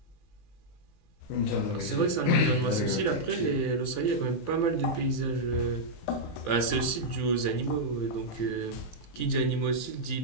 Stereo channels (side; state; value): right; late; 18 ms